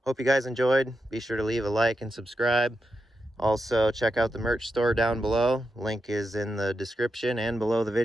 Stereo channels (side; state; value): both; normal; correlation 0.87